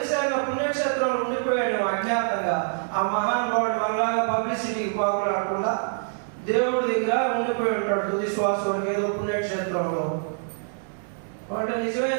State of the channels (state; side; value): silent; left; digital silence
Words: ఆయన పుణ్యక్షేత్రంలో ఉండిపోయాడు అజ్ఞాతంగా. ఆ మహానుభావుడు మనలాగా పబ్లిసిటీకి పాకులాడకుండా దేవుడి దగ్గర ఉండిపోయి ఉంటాడు తుది శ్వాస వరకు ఏదో పుణ్యక్షేత్రంలో. వాడు